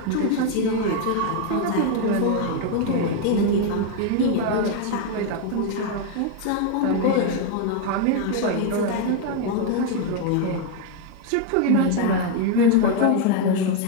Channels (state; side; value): different; both; correlation 0.01